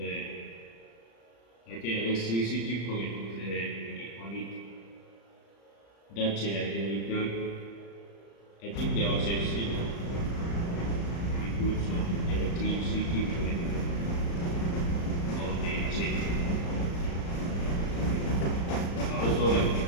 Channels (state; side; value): late; right; 35 ms